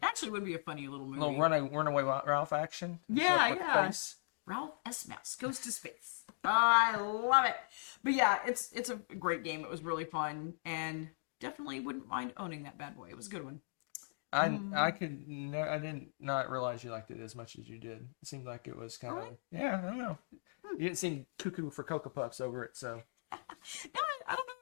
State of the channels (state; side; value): silent; right; digital silence